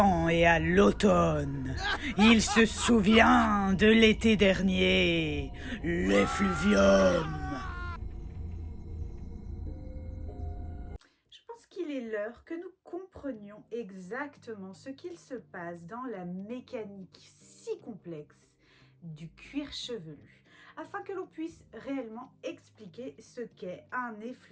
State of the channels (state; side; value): identical; both; correlation 1.00